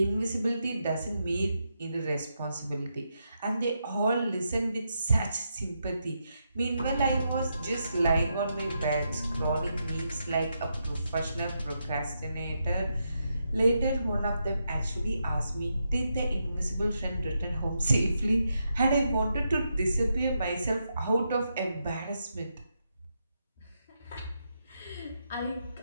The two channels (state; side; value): inverted; both; correlation -0.83